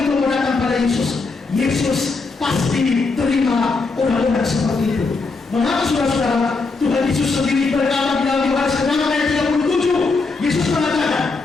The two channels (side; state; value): right; quieter; 4.0 dB